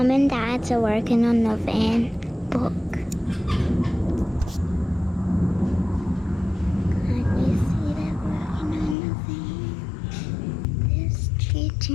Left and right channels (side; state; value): right; drops out; at 9.0 s